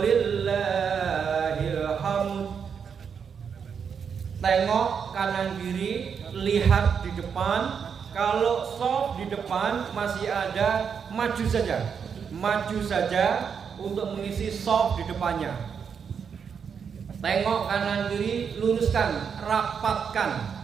hamd. Tengok kanan kiri, lihat di depan. Kalau shaf di depan masih ada, maju saja untuk mengisi shaf di depannya. Tengok kanan kiri, luruskan, rapatkan.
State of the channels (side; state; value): left; quieter; 6.8 dB